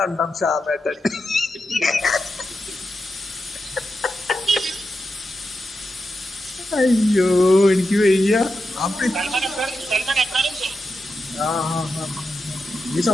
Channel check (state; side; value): normal; both; correlation 0.88